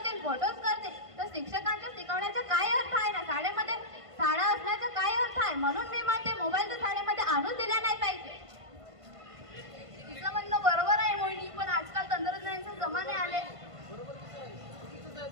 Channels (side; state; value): left; late; 1.5 ms